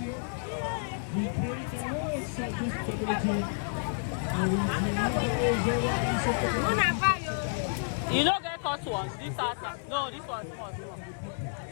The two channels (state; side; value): silent; right; digital silence